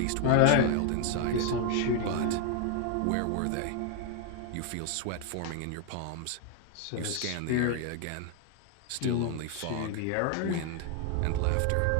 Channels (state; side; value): different; both; correlation 0.01